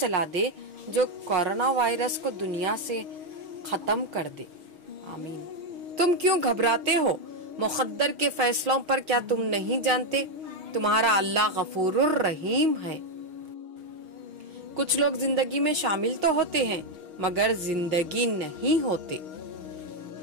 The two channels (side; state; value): left; late; 6.4 ms